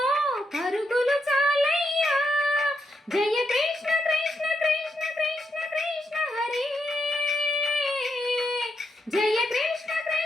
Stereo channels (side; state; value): both; normal; correlation 0.81